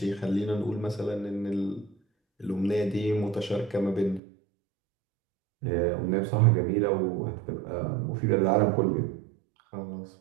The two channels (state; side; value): drops out; left; at 4.2 s